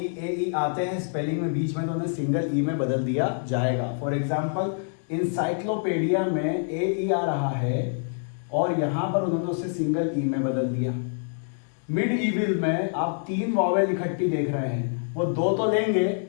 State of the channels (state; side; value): silent; right; digital silence